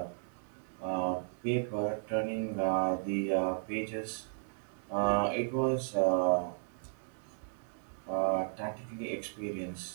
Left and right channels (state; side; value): silent; left; digital silence